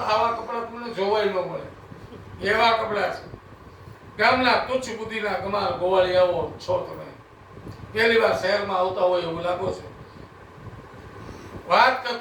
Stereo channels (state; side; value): identical; both; correlation 1.00